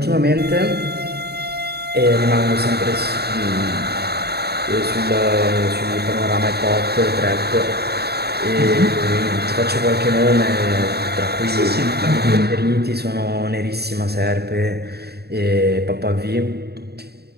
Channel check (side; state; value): left; late; 0.47 ms